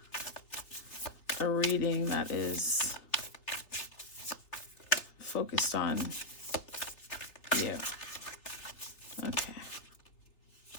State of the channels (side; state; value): right; late; 3.3 ms